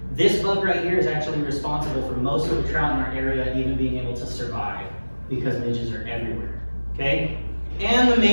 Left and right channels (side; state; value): both; inverted; correlation -1.00